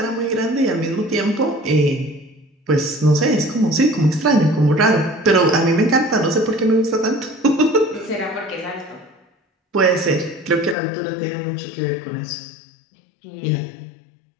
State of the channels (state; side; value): drops out; right; at 10.8 s